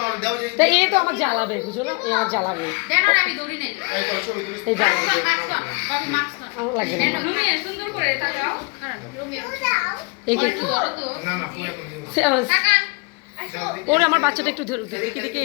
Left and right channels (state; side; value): quieter; right; 31.4 dB